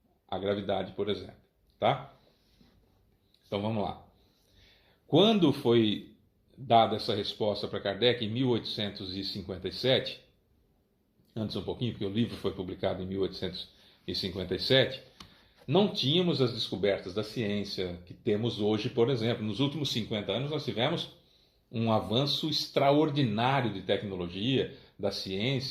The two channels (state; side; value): identical; both; correlation 1.00